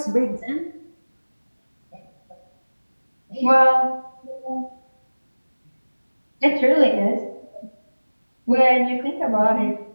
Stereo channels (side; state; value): both; inverted; correlation -1.00